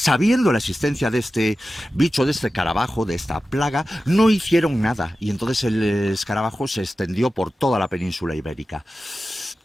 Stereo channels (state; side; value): normal; both; correlation 0.94